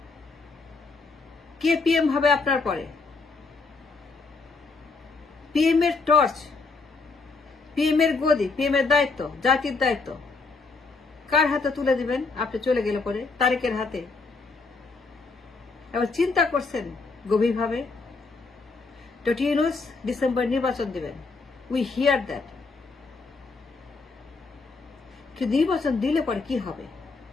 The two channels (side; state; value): right; quieter; 4.1 dB